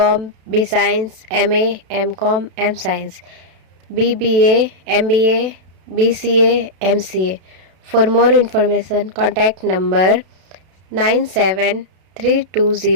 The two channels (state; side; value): late; left; 32 ms